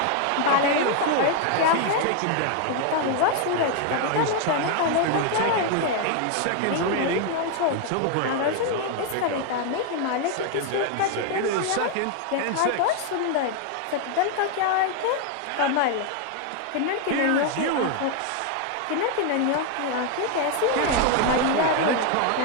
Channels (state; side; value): different; both; correlation 0.00